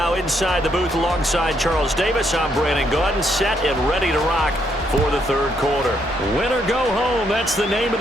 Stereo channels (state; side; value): normal; both; correlation 0.74